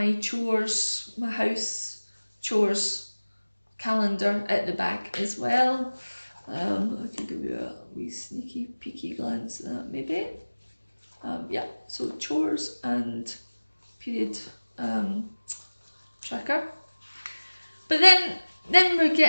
chores, my house chores calendar at the back as well. I can give you a wee sneaky peeky glance at that maybe. Yeah, so chores and period tracker. But then we're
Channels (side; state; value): both; inverted; correlation -1.00